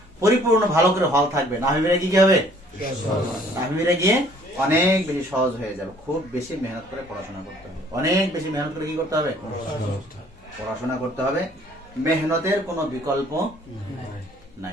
পরিপূর্ণ ভালো করে হল থাকবে, নাহবিরে কি হবে? নাহবিরে গিয়ে অনেক বেশি সহজ হয়ে যাবে। খুব বেশি মেহনত করে পড়াশোনা করতে হবে, অনেক বেশি মেহনত করে কি করতে হবে? পড়াশোনা করতে হবে। মেহনতের কোনো বিকল্প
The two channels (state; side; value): normal; both; correlation 0.58